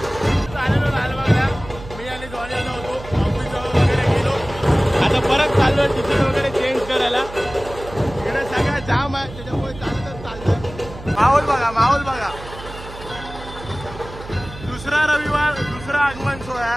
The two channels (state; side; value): noise; right; hum, 15 dB below the sound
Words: मी आणि जॉनी आलो होतो ऑफिस वगैरे गेलो. आता परत चाललोय तिकीट वगैरे चेंज करायला. इकडे सगळं जाम आहे त्याच्यामुळे चालतच चाललंय. माहोल बघा माहोल बघा. दुसरा रविवार दुसरा आगमन सोहळा.